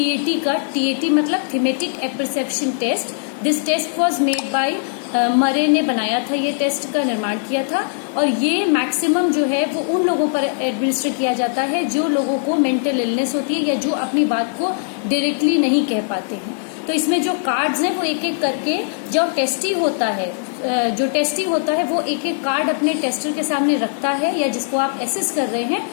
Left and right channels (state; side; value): silent; right; digital silence